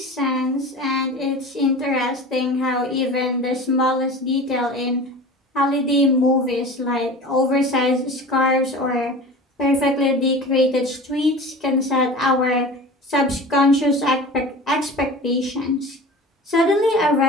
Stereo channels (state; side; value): normal; both; correlation 0.36